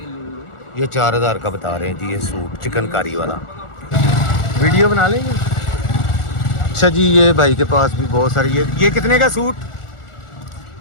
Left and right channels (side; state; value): right; late; 1.4 ms